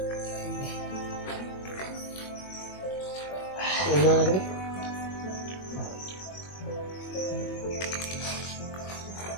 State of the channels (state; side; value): late; right; 21 ms